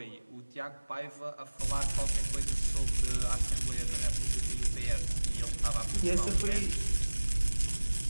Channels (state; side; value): inverted; both; correlation -1.00